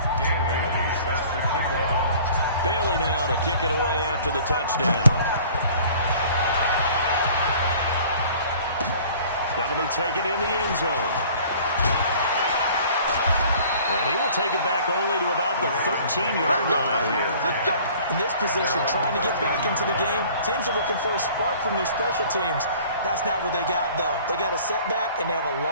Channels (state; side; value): inverted; both; correlation -0.49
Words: Dan Bailey set to kick off. Bailey now to kick it away after the touchdown. That'll be taken in the end zone. And he will take it back only to about the 13-yard line here. In this position, trying to get back into the game, teams are looking for a spark from their special teams. That's not what they got, though. They got a setback, and they have a